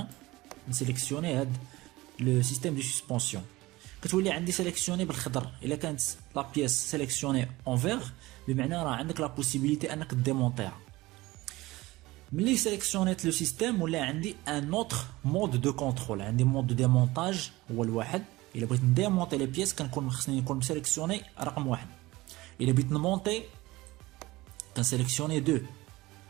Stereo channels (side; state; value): left; quieter; 19.7 dB